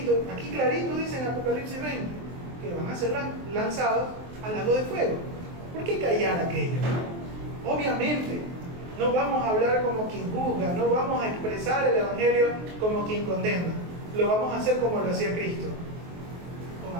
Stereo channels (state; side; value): late; left; 23 ms